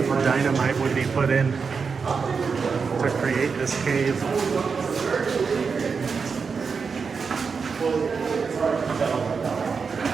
dynamite would be put in to create this cave.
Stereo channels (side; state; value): left; quieter; 5.4 dB